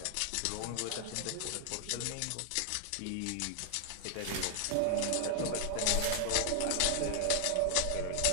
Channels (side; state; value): both; different; correlation 0.00